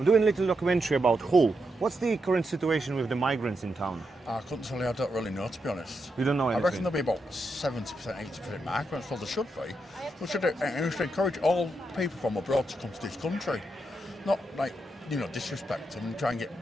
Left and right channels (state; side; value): normal; both; correlation 0.84